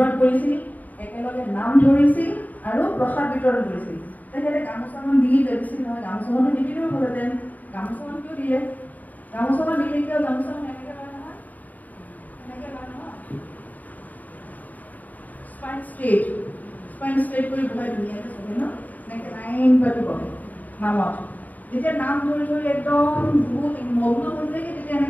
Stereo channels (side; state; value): right; late; 0.078 ms